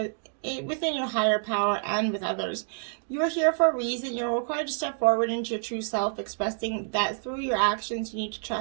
within your higher power and with others. You are here for a reason. You're required to step forward into your true self, expressing that through your actions you need to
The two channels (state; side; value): silent; left; digital silence